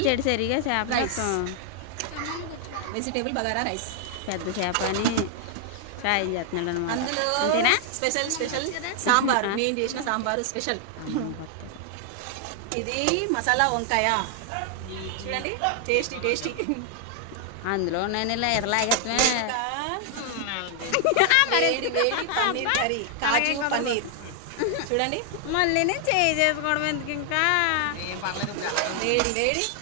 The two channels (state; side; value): different; both; correlation 0.00